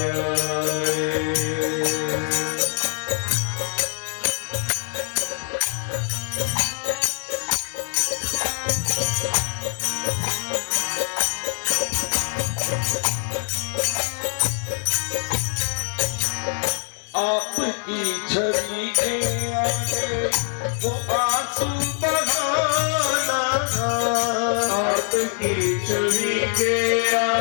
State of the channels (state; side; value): silent; right; digital silence